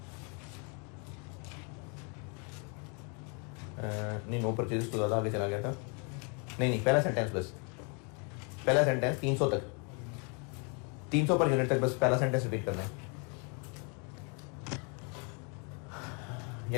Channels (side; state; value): right; quieter; 35.5 dB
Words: नहीं, नो परचेजेस तो ज़्यादा आगे चला गया था। नहीं, पहला सेंटेंस बस, पहला सेंटेंस 300 तक, 300 पर यूनिट तक बस पहला सेंटेंस रिपीट करना है।